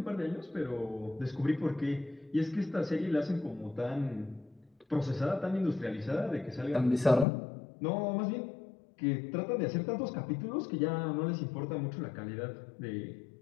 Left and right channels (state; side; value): drops out; right; at 7.2 s